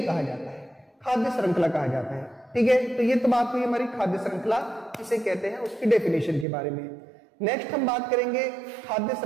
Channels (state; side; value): drops out; left; at 6.5 s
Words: कहा जाता है, खाद्य श्रृंखला कहा जाता है। ठीक है, तो ये तो बात हुई हमारी खाद्य श्रृंखला किसे कहते हैं उसकी डेफिनेशन के बारे में। नेक्स्ट हम बात करेंगे खाद्य